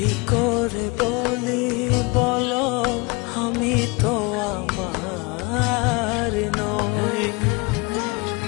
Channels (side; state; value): right; quieter; 27.2 dB